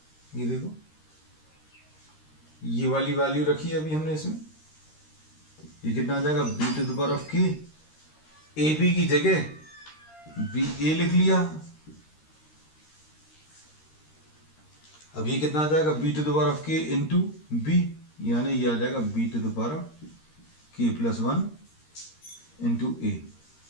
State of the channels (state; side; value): late; right; 13 ms